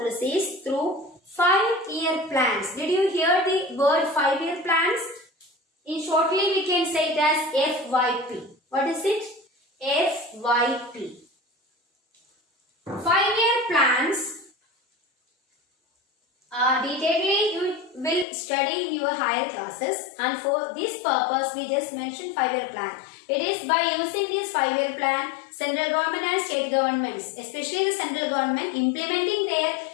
through 5-year plans. Did you hear the word 5-year plans? In shortly we can say it as FYP. What is it? FYP. 5-year plans. Detailedly you will study in your higher classes, and for this purpose we just mentioned 5-year plan. It is by using this 5-year plan, central government and state governments, especially the central government, implementing their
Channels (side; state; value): right; drops out; at 18.2 s